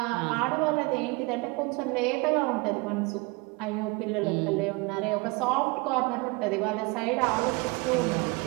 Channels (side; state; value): left; quieter; 26.4 dB